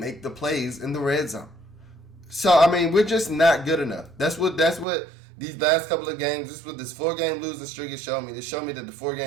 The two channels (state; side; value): drops out; left; at 4.9 s